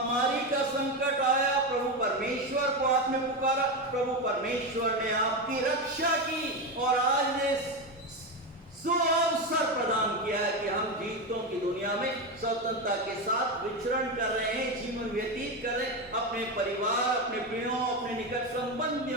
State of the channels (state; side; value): normal; both; correlation 0.15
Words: का संकट आया, प्रभु परमेश्वर को आपने पुकारा, प्रभु परमेश्वर ने आपकी रक्षा की और आज ने सुअवसर प्रदान किया है कि हम जीवितों की दुनिया में स्वतंत्रता के साथ विचरण कर रहे हैं, जीवन व्यतीत कर रहे हैं, अपने परिवार, अपने प्रियों, अपने निकट